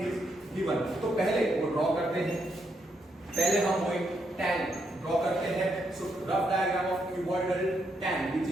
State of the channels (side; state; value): both; normal; correlation 0.78